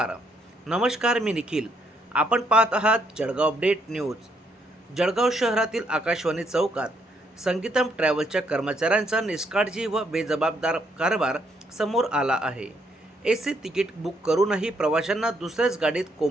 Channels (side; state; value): both; normal; correlation 0.72